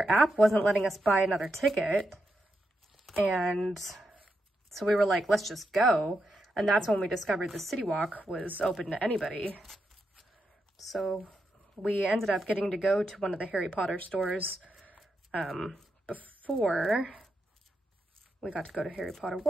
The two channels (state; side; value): normal; both; correlation 0.85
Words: app wasn't letting us buy another ticket. And so we were like, let's just go. And that's when we discovered the City Walk was open to anybody. So we ended up getting to go to one of the Harry Potter stores before we got to go to Harry Potter